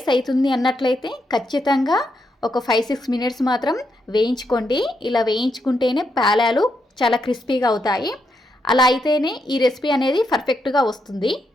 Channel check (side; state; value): both; normal; correlation 0.81